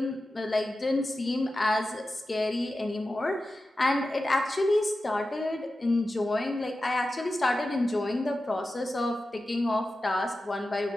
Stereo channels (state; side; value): normal; both; correlation 0.93